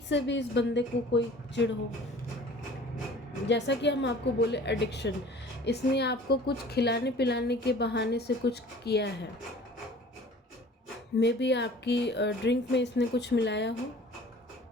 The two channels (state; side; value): normal; both; correlation 0.46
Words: से भी इस बंदे को कोई चिढ़ हो। जैसा कि हम आपको बोले, एडिक्शन, इसने आपको कुछ खिलाने पिलाने के बहाने से कुछ किया है। मे बी आपकी ड्रिंक में इसने कुछ मिलाया हो।